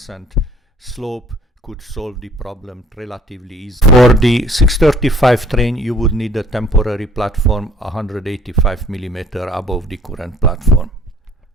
slope could solve the problem relatively easily. For the 635 train, you would need a temporary platform 185 mm above the current platform.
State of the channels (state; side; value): normal; both; correlation 0.55